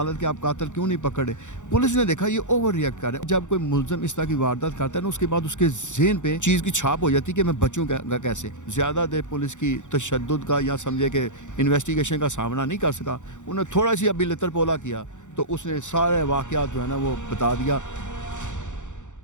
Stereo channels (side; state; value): right; late; 0.85 ms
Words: کے آپ قاتل کیوں نہیں پکڑے۔ پولیس نے دیکھا یہ اوور ریئیکٹ کر رہا ہے۔ جب کوئی ملزم اس طرح کی واردات کرتا ہے نا، اس کے بعد اس کے ذہن پہ چیز کی چھاپ ہو جاتی ہے کہ میں بچوں گا کیسے۔ زیادہ دیر پولیس کی تشدد کا یا سمجھے کہ انویسٹیگیشن کا سامنا نہیں کر سکا، انہوں نے تھوڑا سی ابھی لتر پولا کیا تو اس نے سارے واقعات جو ہے نا وہ بتا دیا۔